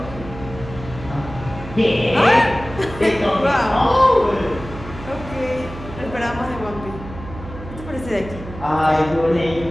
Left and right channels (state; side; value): noise; right; hum, 13 dB below the sound